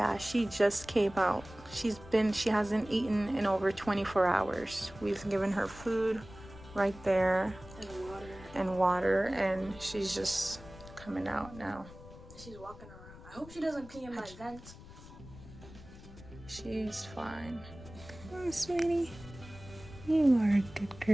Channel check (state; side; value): noise; left; rumble, 17 dB below the sound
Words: she just came out. She hasn't eaten in over 24 hours. We've given her food right there. And water. And she's just coming out now. She's walking around. I hope she doesn't pee in my vent. She's fine. Oh, sweetie. You are a good